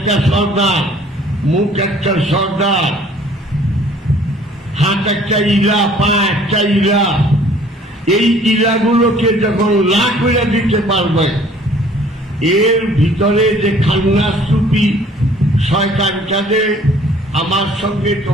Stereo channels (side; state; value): both; normal; correlation 0.55